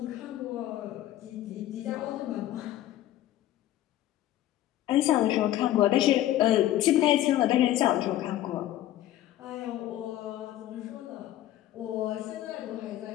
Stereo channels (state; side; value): quieter; right; 13.6 dB